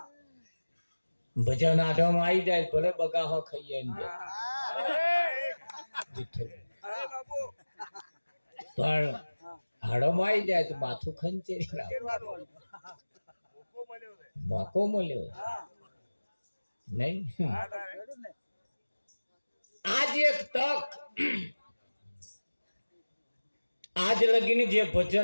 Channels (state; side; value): inverted; both; correlation -1.00